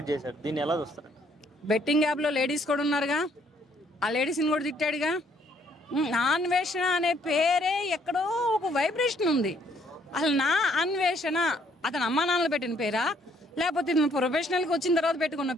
చేశారు. దీన్ని ఎలా చూస్తారు? బెట్టింగ్ యాప్లో లేడీస్ కూడా ఉన్నారుగా, ఆ లేడీస్ని కూడా తిట్టాడుగా. అన్వేషణ అనే పేరే ఎక్కడో ఒక వైబ్రేషన్ ఉంది. అసలు నా అన్వేషణ అతను అమ్మా నాన్నలు పెట్టిన పేరా, లేకపోతే ఇతను ప్రొఫెషనల్కి వచ్చిన తర్వాత పెట్టుకున్న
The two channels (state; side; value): normal; both; correlation 0.66